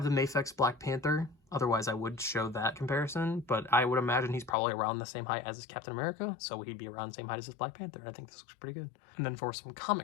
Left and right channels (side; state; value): right; drops out; at 4.5 s